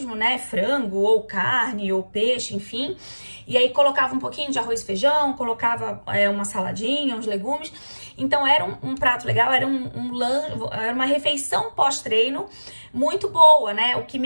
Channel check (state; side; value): inverted; both; correlation -1.00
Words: né? Frango, ou carne, ou peixe, enfim. E aí colocava um pouquinho de arroz e feijão, colocava uma saladinha, uns legumes. Então era um prato legal, era era uma refeição pós-treino muito boa, né? O que